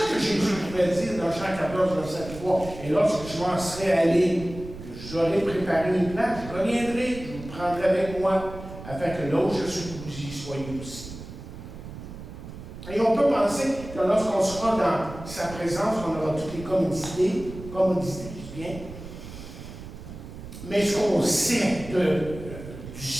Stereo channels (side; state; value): right; noise; rumble, 13 dB below the sound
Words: que Jésus pouvait dire dans Jean 14, verset 3, et lorsque je m'en serai allé, j'aurai préparé une place, je reviendrai, je vous prendrai avec moi, afin que là où je suis, vous y soyez aussi. Et on peut penser que lorsqu'on sera dans sa présence, on aura toutes les commodités, je dis bien. Mais ce qu'on sait du